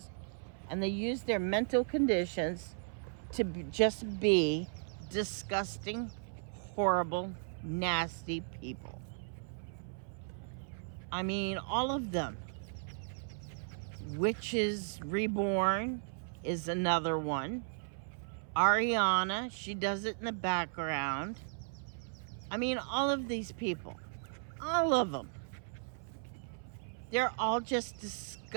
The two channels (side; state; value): left; silent; 54 dB below the other